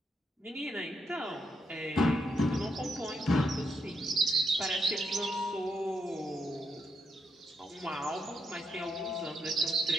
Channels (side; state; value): both; normal; correlation 0.79